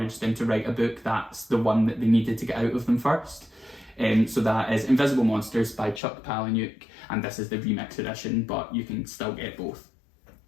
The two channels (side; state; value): right; drops out; at 6.0 s